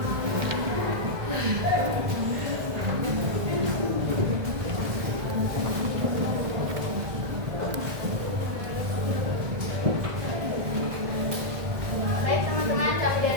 Baik teman-teman, kami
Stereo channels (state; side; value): late; left; 1.7 ms